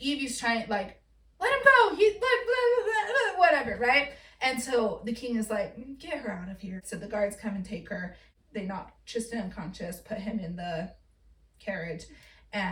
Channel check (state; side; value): identical; both; correlation 1.00